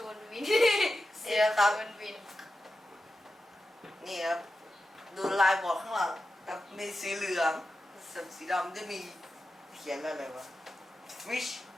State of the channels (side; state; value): both; normal; correlation 0.91